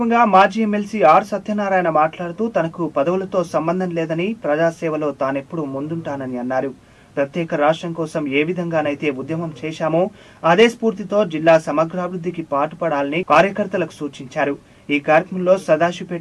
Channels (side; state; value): both; identical; correlation 1.00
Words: మాజీ ఎమ్మెల్సీ ఆర్ సత్యనారాయణ మాట్లాడుతూ తనకు పదవులతో సంబంధం లేదని, ప్రజాసేవలో తానెప్పుడు ముందుంటానని అన్నారు. ప్రత్యేక రాష్ట్రం కోసం ఏ విధంగానైతే ఉద్యమం చేశామో అదే స్ఫూర్తితో జిల్లా సమగ్రాభివృద్ధికి పాటుపడాలని కార్యకర్తలకు సూచించారు. ఈ కార్యక్రమంలో